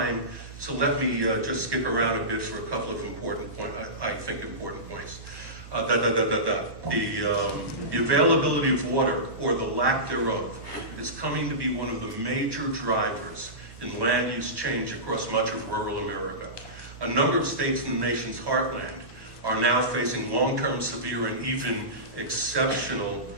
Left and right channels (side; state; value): left; late; 1.1 ms